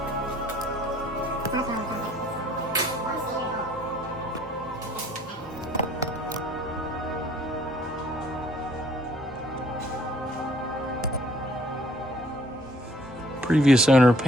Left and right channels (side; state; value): both; normal; correlation 0.59